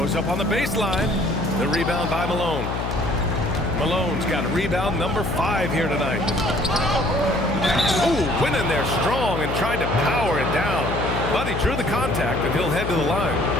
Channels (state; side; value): noise; left; hum, 3 dB below the sound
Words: up on the baseline. The rebound by Malone. Malone's got rebound number 5 here tonight. Ooh, went in there strong and tried to power it down. But he drew the contact and he'll head to the